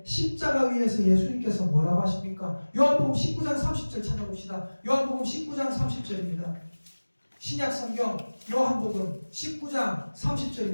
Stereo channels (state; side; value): inverted; both; correlation -1.00